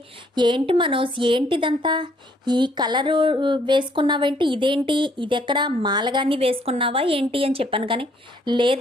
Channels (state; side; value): normal; both; correlation 0.66